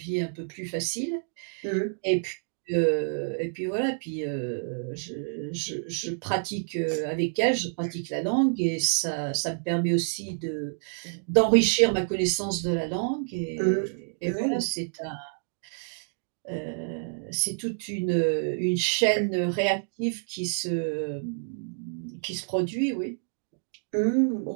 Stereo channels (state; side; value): silent; left; digital silence